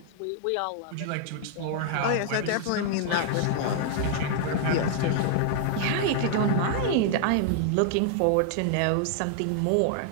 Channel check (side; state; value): both; different; correlation 0.00